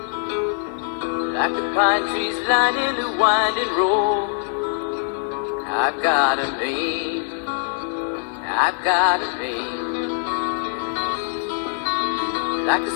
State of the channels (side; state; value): right; silent; 64 dB below the other